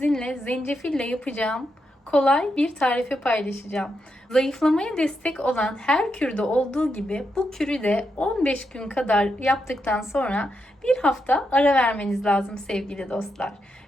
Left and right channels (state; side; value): normal; both; correlation 0.83